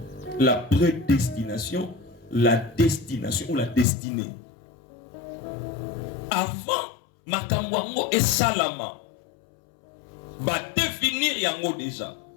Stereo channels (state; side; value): drops out; right; at 3.9 s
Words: La prédestination, la destination ou la destinée. Avant, makamouango et salama. Va définir yango déjà,